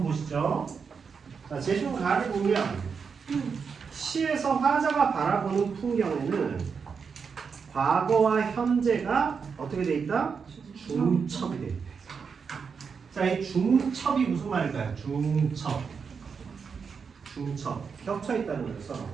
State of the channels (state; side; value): quieter; left; 5.9 dB